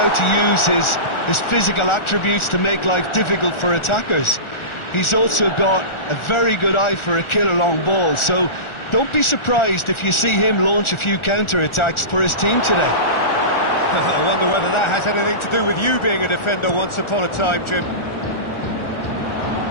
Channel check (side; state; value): right; late; 1.4 ms